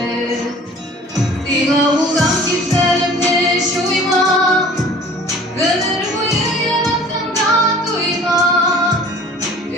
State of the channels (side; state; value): both; normal; correlation 0.47